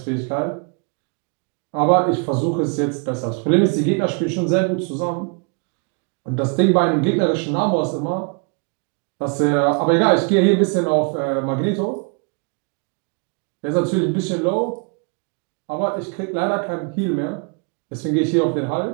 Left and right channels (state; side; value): quieter; left; 36.0 dB